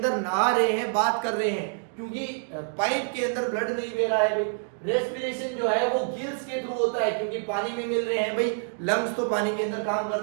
नहा रहे हैं, बात कर रहे हैं, क्योंकि पाइप के अंदर ब्लड नहीं बह रहा है भाई। रेस्पिरेशन जो है वो गिल्स के थ्रू होता है, क्योंकि पानी में मिल रहे हैं भाई। लंग्स तो पानी के अंदर काम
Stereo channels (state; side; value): silent; left; digital silence